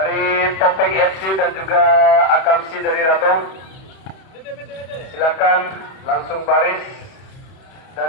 Topeng FC dan juga Akamsi dari Ratong. Silakan langsung baris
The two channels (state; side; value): late; right; 31 ms